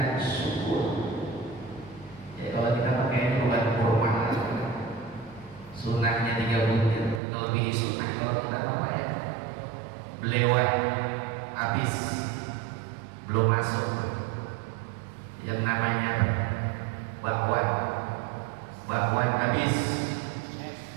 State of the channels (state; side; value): drops out; left; at 7.2 s